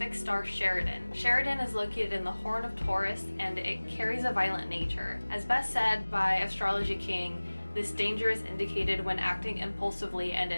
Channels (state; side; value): inverted; both; correlation -1.00